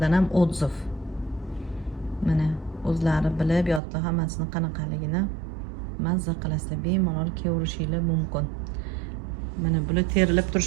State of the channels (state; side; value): drops out; left; at 3.8 s